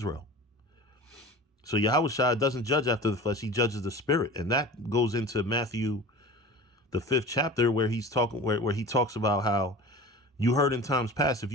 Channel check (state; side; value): normal; both; correlation 0.36